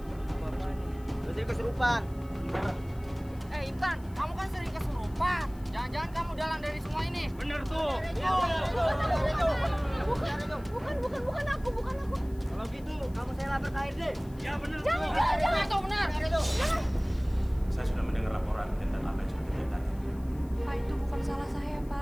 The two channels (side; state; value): left; noise; hiss, 26 dB below the sound